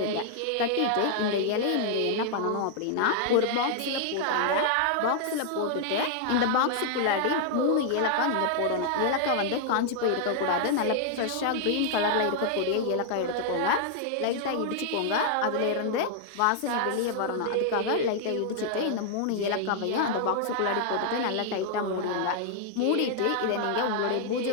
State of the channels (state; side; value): different; both; correlation -0.01